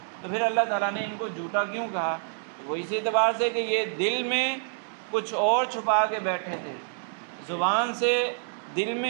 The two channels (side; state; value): left; silent; digital silence